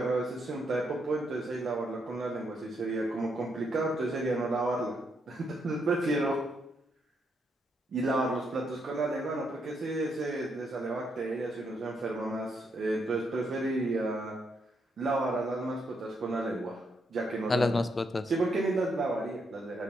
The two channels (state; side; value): normal; both; correlation 0.77